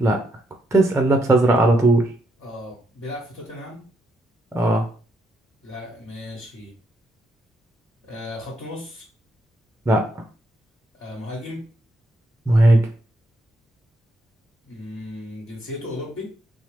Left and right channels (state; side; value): normal; both; correlation 0.77